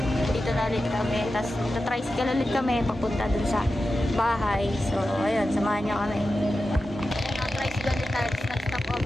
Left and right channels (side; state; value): both; normal; correlation 0.92